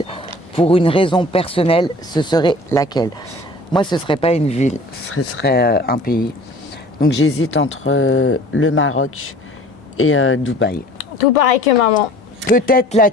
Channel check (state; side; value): normal; both; correlation 0.47